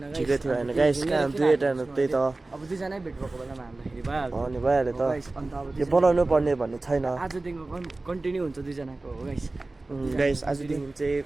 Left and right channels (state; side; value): quieter; left; 3.1 dB